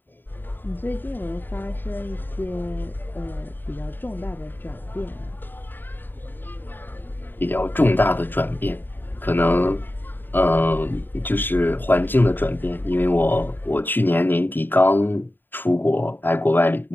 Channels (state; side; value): late; right; 0.093 ms